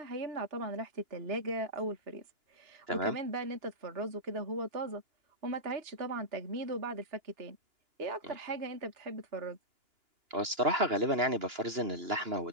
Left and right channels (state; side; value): late; left; 2.9 ms